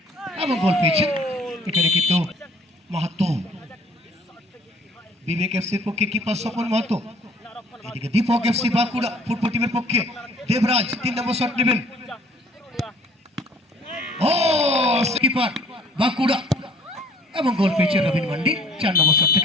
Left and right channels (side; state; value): both; normal; correlation 0.56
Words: এবং গোল পেয়েছেন এখানে কিন্তু মাহাতো বিবেক এফসির পক্ষে কিপার স্বপন মাহাতো এদিকে দীপক এফসি বাঁকুড়া ফুটবল টিমের পক্ষে দেবরাজ 3 নম্বর শট নেবেন ও কিপার বাঁকুড়া এবং গোল পেয়েছে রবিন মান্ডি 4 নম্বর শট